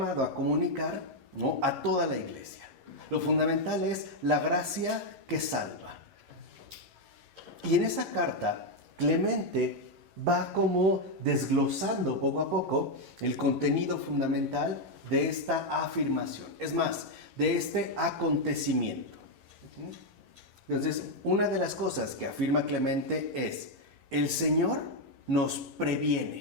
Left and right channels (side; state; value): left; late; 11 ms